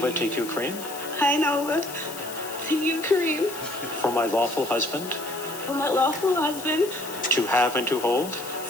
take you, Kareem, Hi, Nova. To you, Kareem. for my lawful husband, For my lawful husband, to have and to hold,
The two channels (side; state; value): left; noise; hiss, 12 dB below the sound